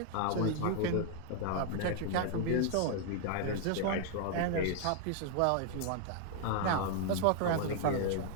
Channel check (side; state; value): both; different; correlation 0.00